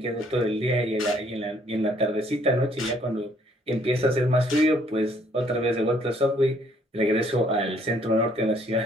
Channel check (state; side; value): normal; both; correlation 0.64